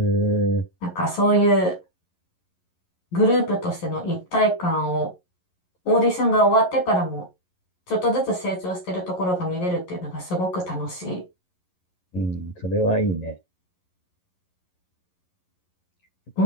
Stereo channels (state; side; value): late; right; 11 ms